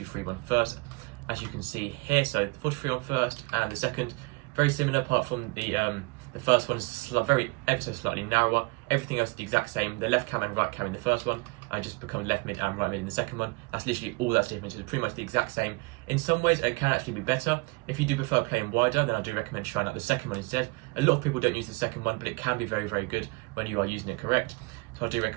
first, as you can see here. So 4-2-3-1 first and the second, very similar apart from the first one is ever so slightly narrower. Everything else is the exact same. The left cam and right cam in the first one just become left mid and right mid in the second one. That's literally all that's different. It's pretty much the exact same. In some ways it can actually be better. If you do prefer playing wider, then I do recommend trying out the second one instead. A lot of people don't use the second one, but it can be very, very good when you are using it correct. So I do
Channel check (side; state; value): left; quieter; 27.4 dB